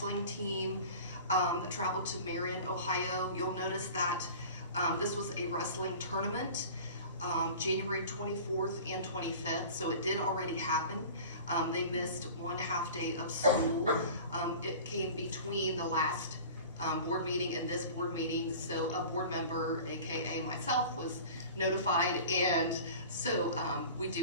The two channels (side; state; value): both; inverted; correlation -0.40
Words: team that traveled to Marion, Ohio. You'll notice that this was a wrestling tournament, January 24th and 25th, so it did already happen. They missed 1 half day of school. It came between the last board meeting and this board meeting, so a board member, AKA myself, was notified, and so we